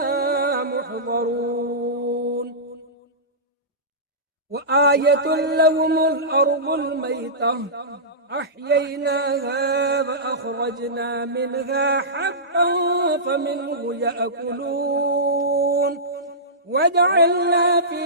محضرون وآية لهم الأرض الميتة أحييناها فأخرجنا منها حبا فمنه يأكلون وجعلنا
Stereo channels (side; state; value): both; normal; correlation -0.18